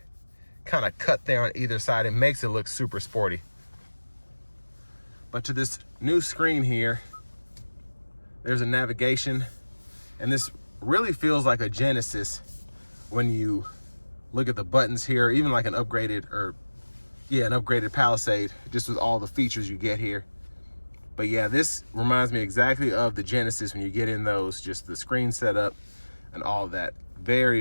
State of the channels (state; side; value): inverted; both; correlation -1.00